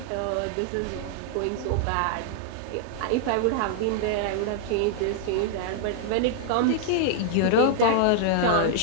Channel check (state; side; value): different; both; correlation -0.01